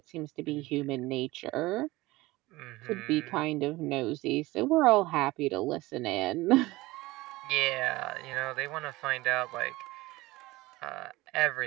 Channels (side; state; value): left; quieter; 19.8 dB